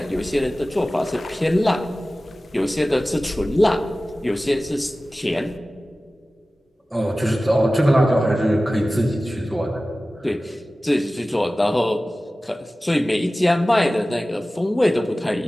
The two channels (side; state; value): both; normal; correlation 0.96